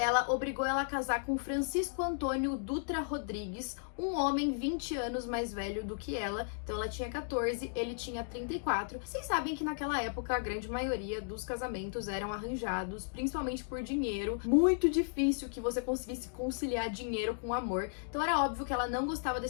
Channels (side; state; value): right; silent; digital silence